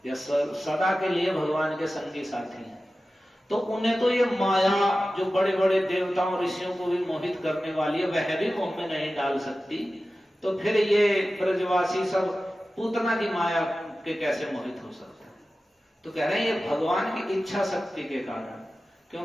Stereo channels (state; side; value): normal; both; correlation 0.95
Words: या सदा के लिए भगवान के संगी साथी हैं। तो उन्हें तो ये माया जो बड़े बड़े देवताओं ऋषियों को भी मोहित करने वाली है, वह भी मोह में नहीं डाल सकती, तो फिर ये ब्रजवासी सब पूतना की माया के कैसे मोहित हो सकते हैं? तो कह रहे हैं ये भगवान की इच्छा शक्ति के कारण,